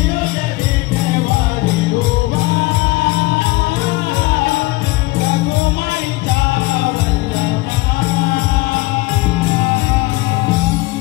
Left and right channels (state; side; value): quieter; right; 21.4 dB